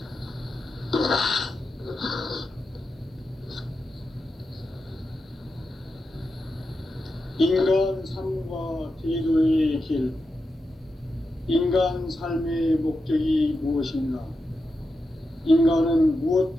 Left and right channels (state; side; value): normal; both; correlation 0.88